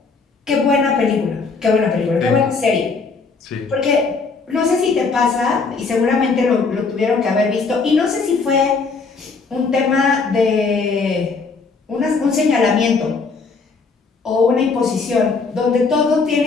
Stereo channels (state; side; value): quieter; right; 4.5 dB